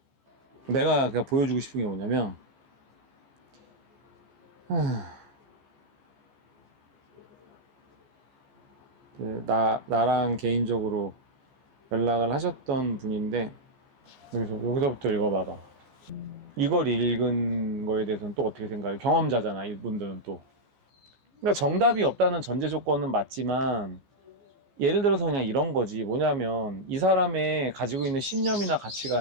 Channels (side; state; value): left; late; 14 ms